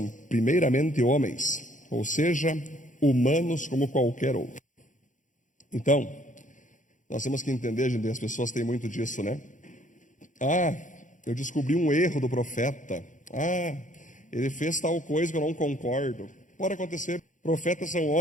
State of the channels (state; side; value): late; right; 0.37 ms